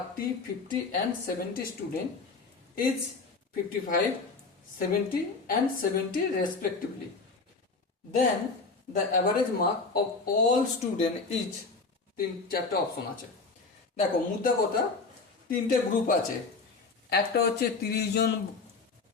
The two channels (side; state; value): right; quieter; 4.1 dB